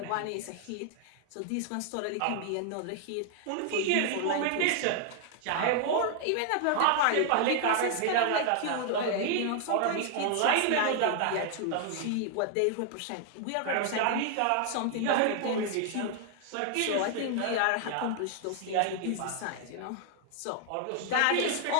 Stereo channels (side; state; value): both; different; correlation 0.00